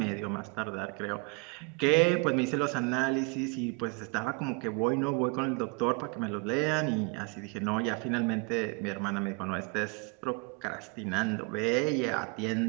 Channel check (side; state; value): left; quieter; 31.3 dB